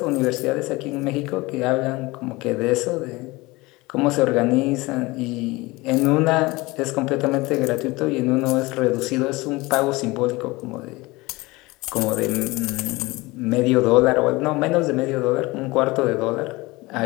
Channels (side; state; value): right; quieter; 22.2 dB